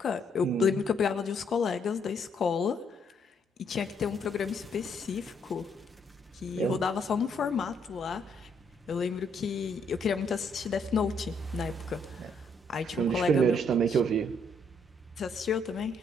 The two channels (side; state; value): both; normal; correlation 0.71